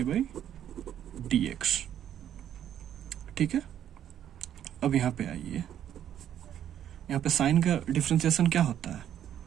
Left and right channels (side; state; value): left; quieter; 10.4 dB